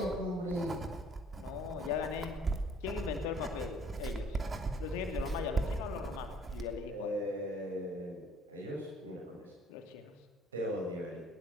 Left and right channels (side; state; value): both; normal; correlation 0.58